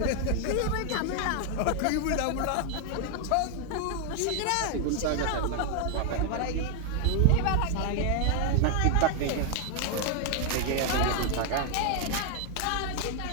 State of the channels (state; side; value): different; both; correlation 0.00